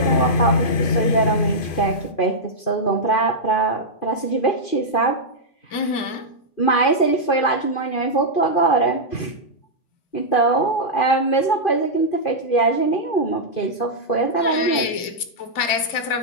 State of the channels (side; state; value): right; late; 2.3 ms